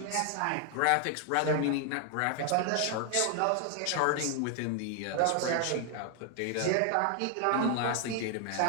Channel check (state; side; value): different; both; correlation 0.00